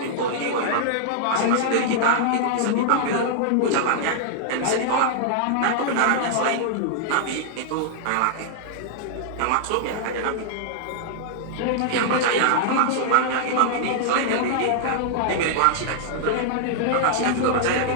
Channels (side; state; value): both; different; correlation -0.01